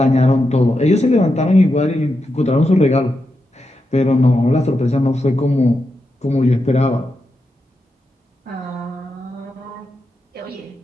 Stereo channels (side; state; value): both; normal; correlation 0.87